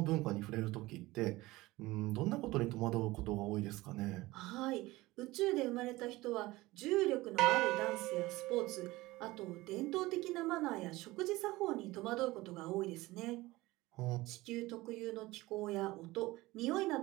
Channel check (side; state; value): left; quieter; 19.4 dB